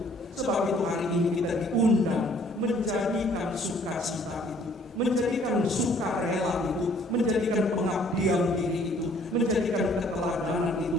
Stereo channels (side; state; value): both; normal; correlation 0.59